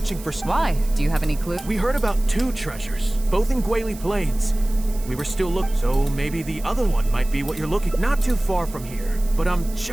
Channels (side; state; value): right; noise; hiss, 18 dB below the sound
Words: for... Why? Do you have any clue? We heard about 2 treasures, both in Guili Plains. We were still looking, so maybe the other one might be what you're looking. Not too far from here, but I'm